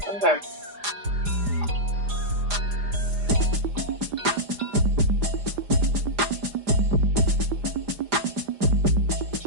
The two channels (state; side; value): late; left; 4.9 ms